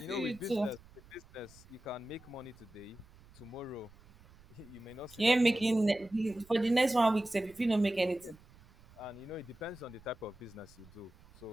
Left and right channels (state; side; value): noise; right; rumble, 24 dB below the sound